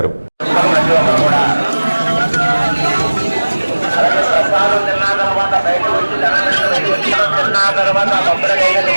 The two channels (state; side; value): inverted; both; correlation -1.00